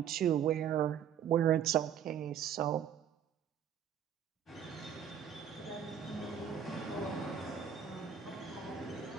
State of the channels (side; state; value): left; quieter; 8.6 dB